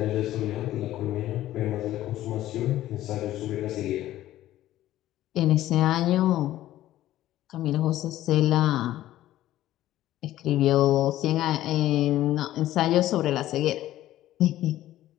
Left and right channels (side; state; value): right; quieter; 14.0 dB